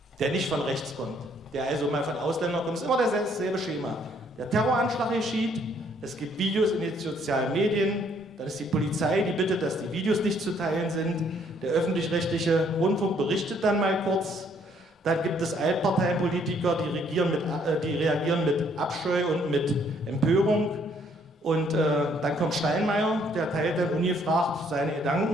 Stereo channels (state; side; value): normal; both; correlation 0.66